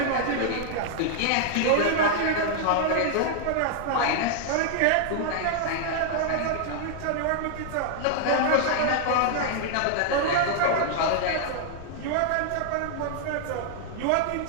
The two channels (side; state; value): both; different; correlation 0.00